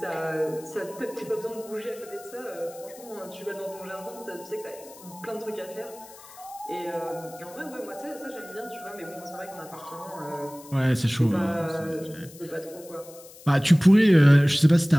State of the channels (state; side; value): noise; left; hiss, 20 dB below the sound